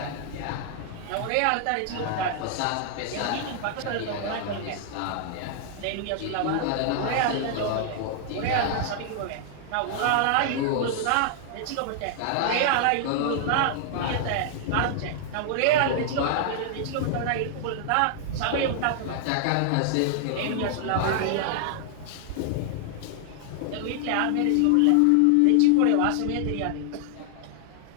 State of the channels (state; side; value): different; both; correlation 0.00